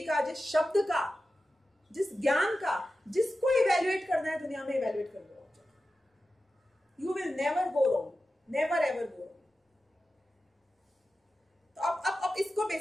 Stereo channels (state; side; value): normal; both; correlation 0.93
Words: का, जिस शब्द का, जिस ज्ञान का, जिसको इवेल्युएट करना है दुनिया में, इवेल्युएट कर लो। You will never go wrong, never ever go wrong. तो अब इसको